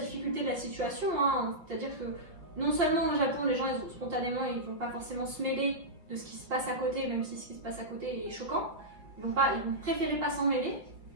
de la situation, hein. C'est-à-dire que non seulement au Japon, les gens spontanément ils vont pas forcément se mêler de ce qui se passe à côté, même si ce qui se passe à côté est choquant. Ils vont préférer pas s'en mêler.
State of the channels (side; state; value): left; late; 5.8 ms